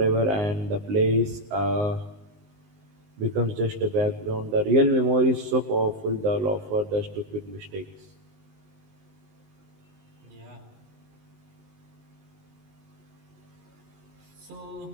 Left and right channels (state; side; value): late; left; 19 ms